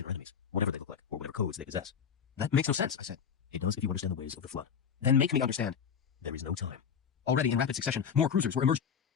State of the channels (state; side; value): quieter; right; 7.2 dB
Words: are enemies, whatever they look like, or whatever codes they possess. That makes no sense, I said. It does if you understand the ways of the Flood. Then make me understand. There is no time. Already in rapid succession, more cruisers were emerging.